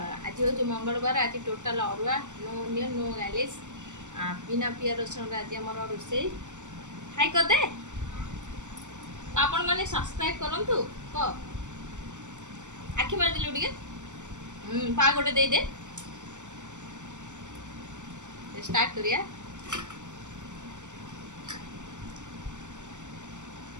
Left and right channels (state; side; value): late; left; 0.85 ms